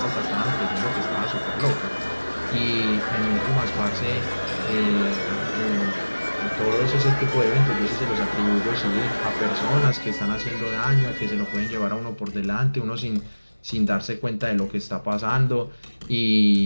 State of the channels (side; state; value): both; inverted; correlation -1.00